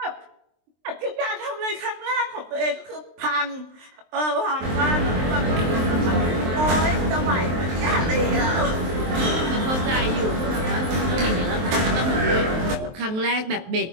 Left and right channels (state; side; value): late; left; 23 ms